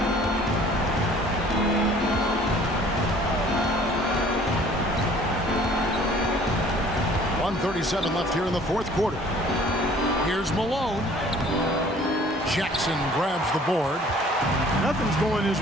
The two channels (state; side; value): normal; both; correlation 0.53